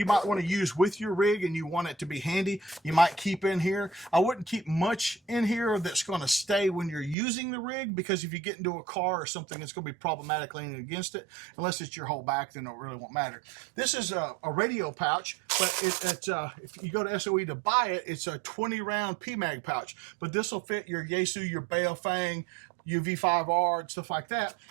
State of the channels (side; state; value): left; drops out; at 7.2 s